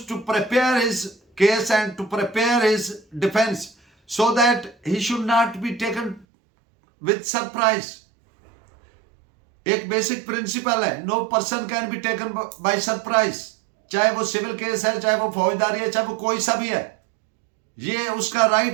to prepare his case and to prepare his defense so that he should not be taken with surprise. एक basic principle है, no person can be taken by surprise, चाहे वो civil case है, चाहे वो फौजदारी है, चाहे वो कोई सा भी है। ये उसका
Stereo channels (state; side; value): drops out; left; at 6.2 s